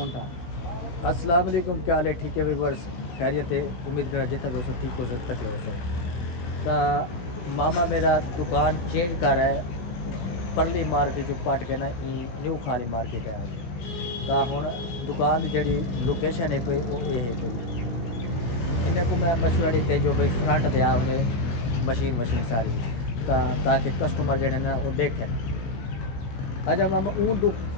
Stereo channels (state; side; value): late; right; 16 ms